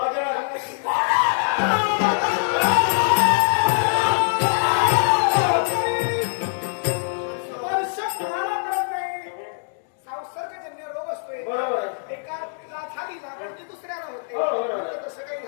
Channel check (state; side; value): silent; right; digital silence